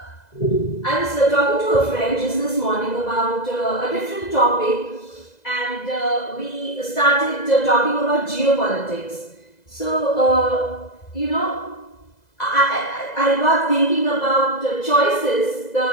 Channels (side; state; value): right; late; 2.0 ms